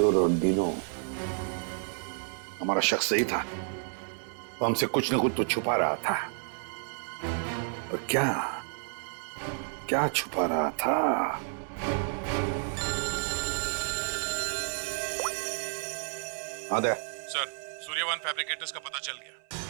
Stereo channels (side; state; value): left; silent; 57 dB below the other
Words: और दीनो, हमारा शख्स सही था। वो हमसे कुछ न कुछ तो छुपा रहा था। और क्या क्या छुपा रहा था? आदे सर, सूर्यवन फैब्रिकेटर्स का पता चल गया।